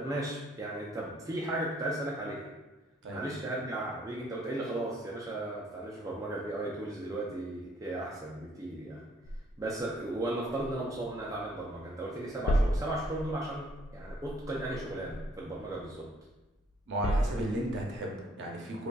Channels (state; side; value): normal; both; correlation 0.64